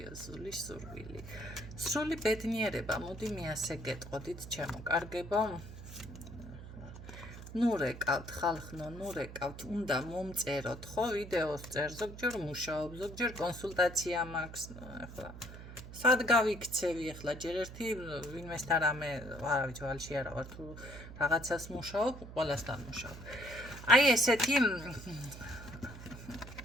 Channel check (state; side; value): noise; right; hum, 13 dB below the sound